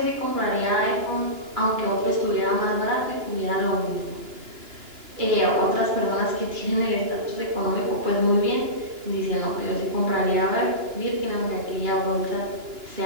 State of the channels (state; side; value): late; left; 2.9 ms